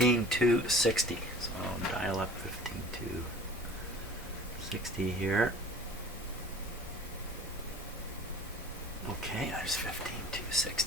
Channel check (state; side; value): normal; both; correlation 0.44